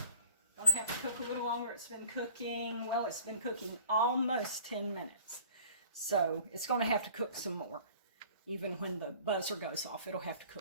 Gonna have to cook a little longer. It's been cooking, well, it's been cooking almost 10 minutes. So it's gonna have to cook some more. Even when the buzzer goes off, it'll have to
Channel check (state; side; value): inverted; both; correlation -0.51